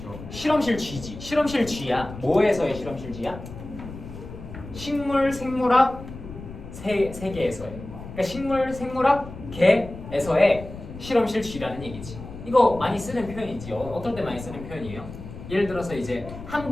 실험실 쥐지. 실험실 쥐야. 뭐에서의 실험실 쥐야? 식물 생물학 세계에서의. 그러니까 식물 생물학 계에서의 실험실 쥐라는 얘기지. 이거 많이 쓰는 표현이지. 어떨 때 많이 쓰는 표현이에요? 예를 들어서 이제 한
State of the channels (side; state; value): left; noise; rumble, 13 dB below the sound